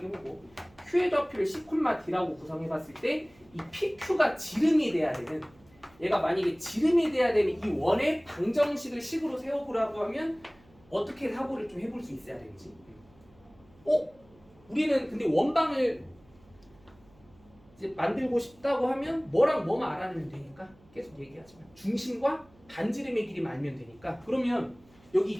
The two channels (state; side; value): noise; right; hum, 28 dB below the sound